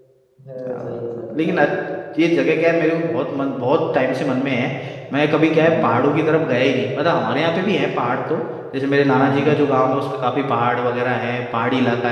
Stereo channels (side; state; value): both; identical; correlation 1.00